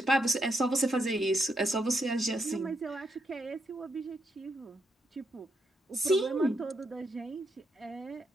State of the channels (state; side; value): normal; both; correlation 0.80